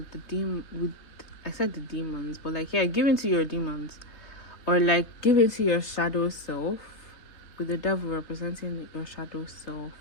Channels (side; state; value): right; late; 3.2 ms